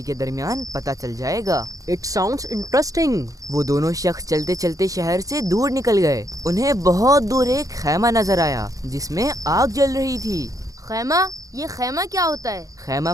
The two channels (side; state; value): left; late; 0.17 ms